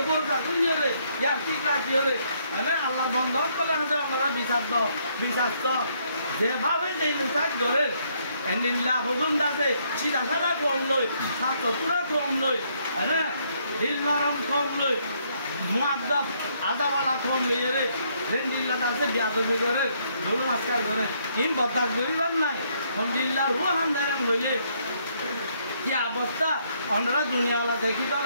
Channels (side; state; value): both; inverted; correlation -0.70